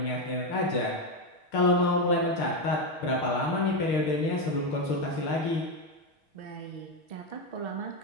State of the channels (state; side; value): late; right; 6.4 ms